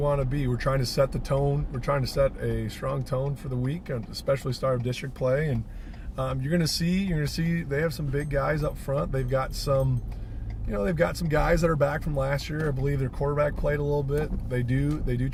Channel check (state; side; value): identical; both; correlation 1.00